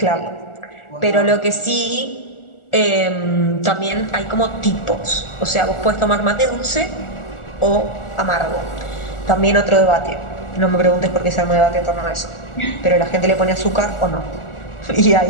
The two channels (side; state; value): right; late; 1.4 ms